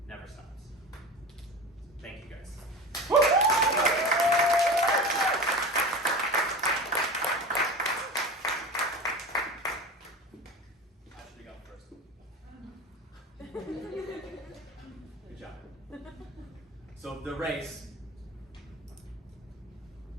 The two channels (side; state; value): both; normal; correlation 0.30